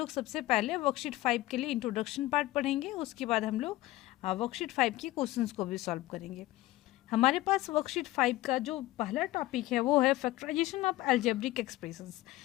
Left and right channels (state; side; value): quieter; right; 17.2 dB